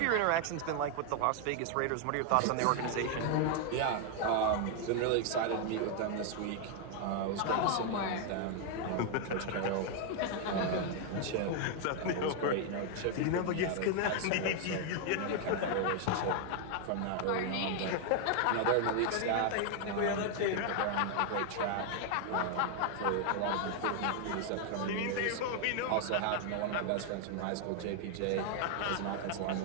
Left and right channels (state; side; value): different; both; correlation 0.00